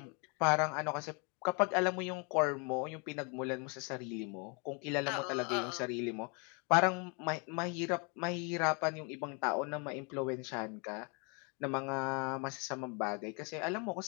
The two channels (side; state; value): right; quieter; 34.4 dB